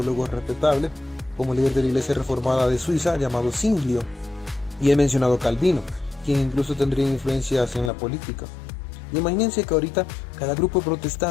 respetables, como el líder de la iglesia reformada de Suiza, llamado Zwinglio, y he mencionado Calvino, quien incluso tendría influencias en la política. Y imagínense que ahorita cada grupo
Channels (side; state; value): right; drops out; at 7.9 s